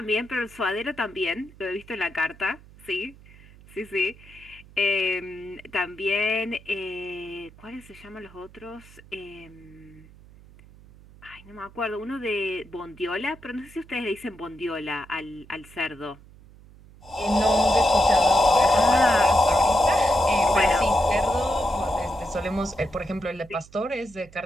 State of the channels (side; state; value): right; noise; hum, 22 dB below the sound